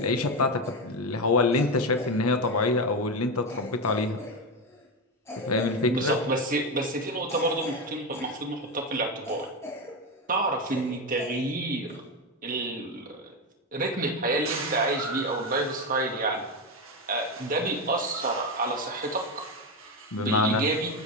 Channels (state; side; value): normal; both; correlation 0.13